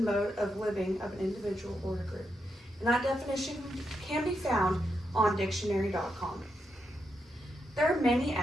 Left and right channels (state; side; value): normal; both; correlation 0.83